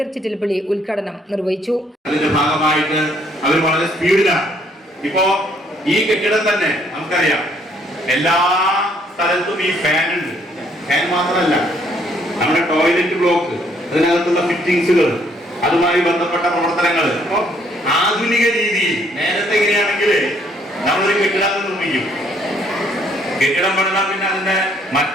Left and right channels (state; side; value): normal; both; correlation 0.66